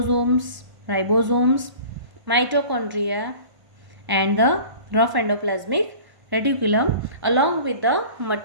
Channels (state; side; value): late; left; 1.1 ms